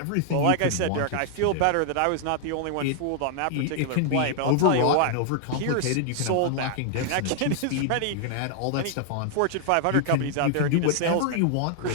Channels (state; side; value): different; both; correlation 0.00